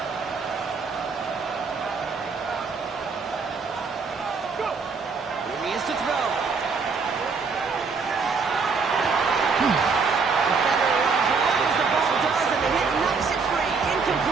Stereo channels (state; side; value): quieter; left; 4.9 dB